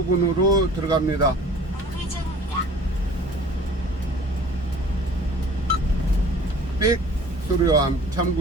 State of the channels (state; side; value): normal; both; correlation 0.47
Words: 들어갑니다. 삑 소리와